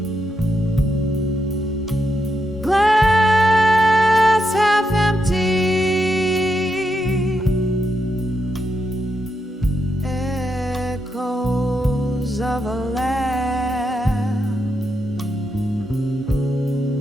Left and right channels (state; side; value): normal; both; correlation 0.83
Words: Glass half empty, echoes of a laugh.